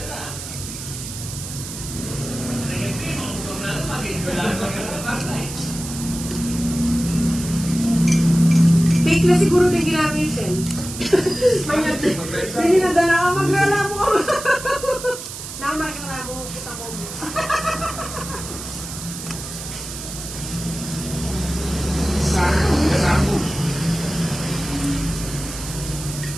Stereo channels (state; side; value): noise; right; hiss, 9 dB below the sound